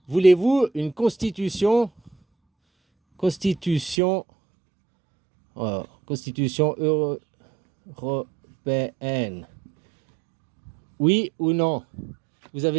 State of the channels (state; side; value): drops out; left; at 4.0 s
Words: voulez-vous une constitution, constitution, constitution européenne? Oui ou non? Vous